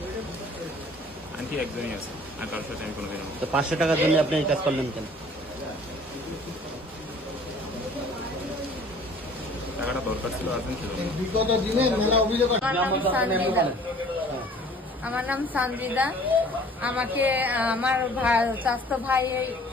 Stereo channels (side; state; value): both; normal; correlation 0.51